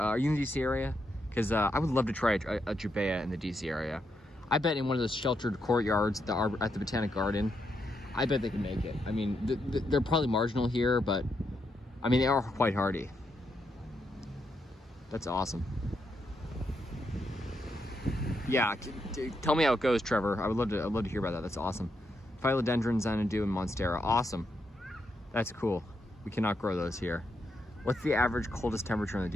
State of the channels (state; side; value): normal; both; correlation 0.81